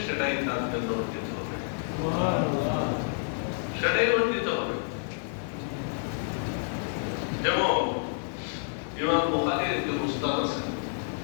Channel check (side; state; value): right; silent; digital silence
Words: সেটাই তার জন্য অর্জিত হবে, সেটাই অর্জিত হবে। যেমন ইমাম বুখারীর একজন উস্তাদ আছেন,